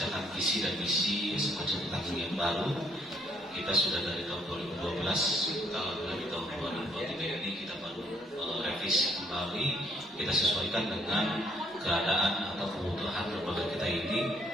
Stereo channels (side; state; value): both; normal; correlation 0.68